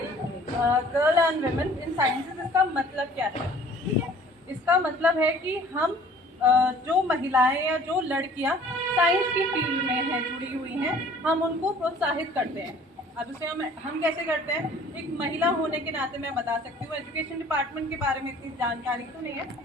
girl and women in sciences, इसका मतलब क्या है? इसका मतलब है कि हम जो महिलाएं या जो लड़कियां साइंस की फील्ड में हैं, जुड़ी हुई हैं, हम उनको प्रोत्साहित करते हैं। अब इसे हम कैसे करते हैं? एक महिला होने के नाते मैं बता सकती हूँ, एजुकेशन डिपार्टमेंट के बारे में इतनी जानकारी तो नहीं है,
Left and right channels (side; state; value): both; normal; correlation 0.51